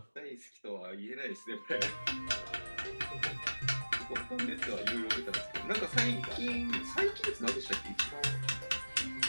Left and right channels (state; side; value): inverted; both; correlation -1.00